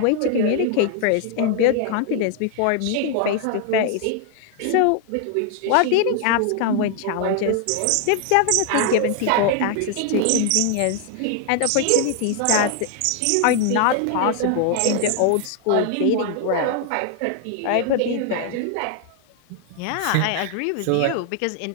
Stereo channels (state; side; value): different; both; correlation 0.00